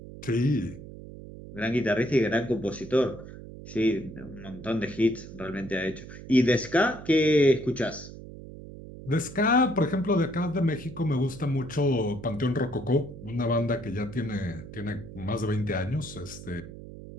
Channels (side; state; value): right; noise; hum, 14 dB below the sound